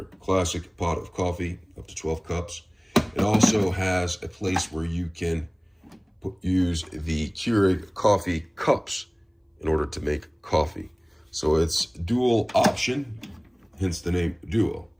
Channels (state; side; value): identical; both; correlation 1.00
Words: classic pot of coffee up to 12 cups. It also has a place where you can use the Keurig coffee cups in order to make coffee. So it's dual option, hence the name Duo.